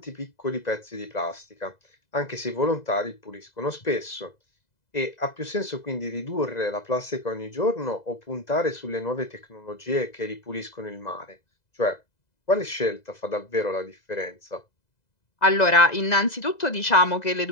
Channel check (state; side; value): late; right; 2.0 ms